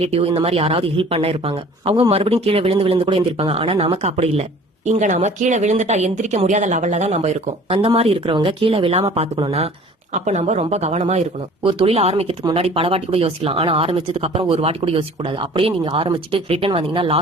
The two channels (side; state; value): both; normal; correlation 0.48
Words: இந்த மாதிரி யாராவது ஹெல்ப் பண்ண இருப்பாங்க. அவங்க மறுபடியும் கீழே விழுந்து விழுந்து கூட எந்திரிப்பாங்க. ஆனா நமக்கு அப்படி இல்ல. இங்க நாம கீழே விழுந்துட்டா எந்திரிக்க முடியாத லெவல்ல தான் நம்ம இருக்கோம். அந்த மாதிரி இருக்கிறவங்க கீழே விழாம பாத்துக்கணும்னா அப்ப நம்ம ரொம்ப கவனமா இருக்கணும். ஒரு தொழில் ஆரம்பிக்கிறதுக்கு முன்னாடி பல வாட்டி கூட யோசிக்கலாம். ஆனா ஆரம்பிச்சதுக்கு அப்புறம் ஒரு வாட்டி கூட யோசிக்க கூடாது. அப்படியே நீங்க ஆரம்பிச்சுட்டு ரிட்டர்ன் வந்தீங்கன்னா